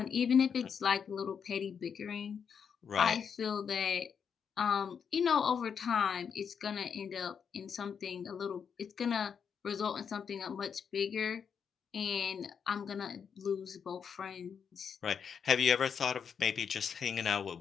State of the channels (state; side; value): quieter; right; 7.0 dB